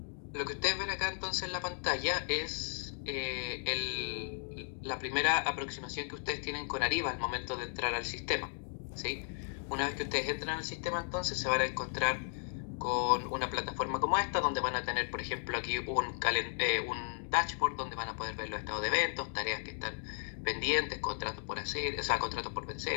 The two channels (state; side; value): silent; right; digital silence